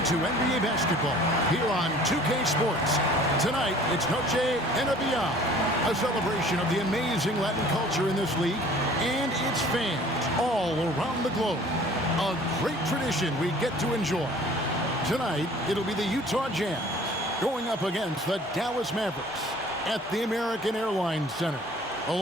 to NBA basketball here on 2K Sports. Tonight, it's Noche NBA, a celebration of the amazing Latin culture in this league and its fans all around the globe. A great tradition we get to enjoy. Tonight, it'll be the Utah Jazz going up against the Dallas Mavericks at the American Airlines Center.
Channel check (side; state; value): both; normal; correlation 0.50